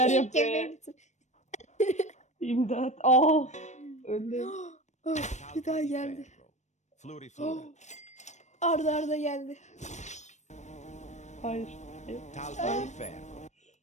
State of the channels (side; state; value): right; late; 0.34 ms